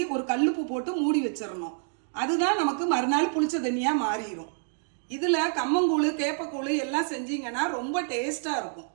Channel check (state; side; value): silent; left; 60 dB below the other